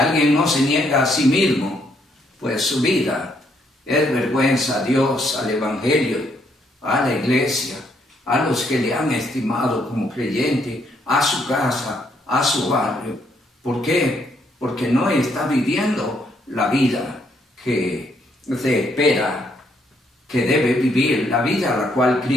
no se niega a sí mismo, pues su vida es vergüenza a Dios, al Evangelio, a la iglesia, a los que le han estimado como creyente, a su casa, a su barrio. ¿Por qué? Porque no está viviendo la vida que se espera que debe vivir, la vida a la cual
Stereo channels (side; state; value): both; normal; correlation 0.72